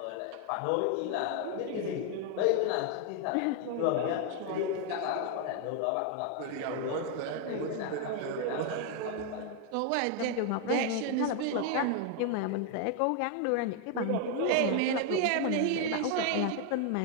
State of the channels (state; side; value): different; both; correlation 0.00